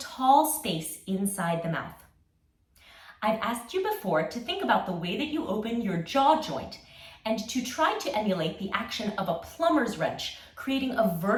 space inside the mouth. I've asked you before to think about the way that you open your jaw joint and to try to emulate the action of a plumber's wrench, creating a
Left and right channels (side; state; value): both; identical; correlation 1.00